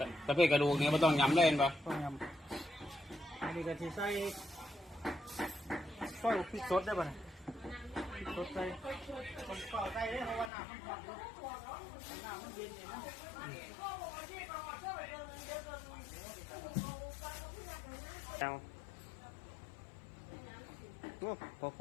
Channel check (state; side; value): drops out; right; at 10.5 s